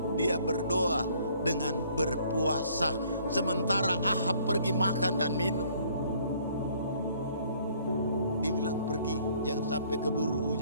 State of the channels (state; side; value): inverted; both; correlation -0.60